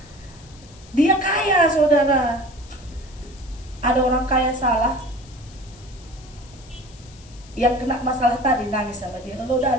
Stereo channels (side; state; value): left; noise; hiss, 24 dB below the sound